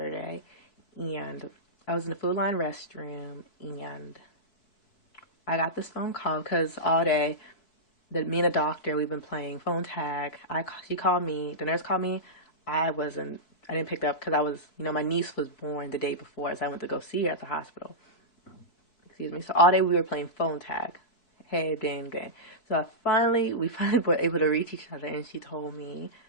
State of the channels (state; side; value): late; right; 4.6 ms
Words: and I was in the Food Line restroom, and I got this phone call because all day, me and the doctor, we've been playing phone tag. She called me, the nurse called me. I didn't pick up because my niece was born the day before, so I went to go see her at the hospital. Excuse me. So all day we were playing phone tag. Hey, dang, dang. So we finally were able to reach each other, and she told me